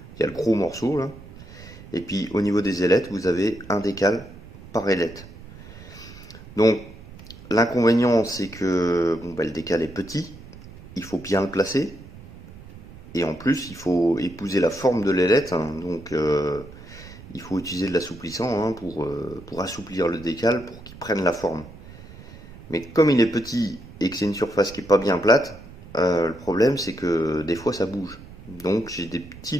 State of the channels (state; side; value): noise; right; rumble, 18 dB below the sound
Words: Il y a le gros morceau, là. Et puis, au niveau des ailettes, vous avez un décal par ailette. Donc, l'inconvénient, c'est que bon, bah, le décal est petit. Il faut bien le placer. Et en plus, il faut épouser la forme de l'ailette. Hein. Donc, il faut utiliser de l'assouplissant hein, pour assouplir le décal, pour qu'il prenne la forme. Mais comme il est petit et que c'est une surface qui n'est pas bien plate, le problème c'est que des fois ça bouge. Donc j'ai des petits